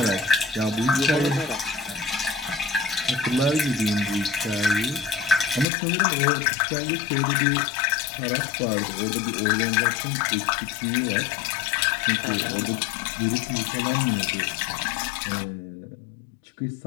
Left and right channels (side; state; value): right; drops out; at 5.7 s